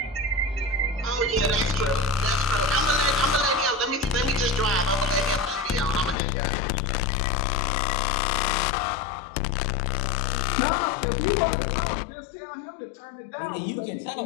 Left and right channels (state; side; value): drops out; right; at 6.2 s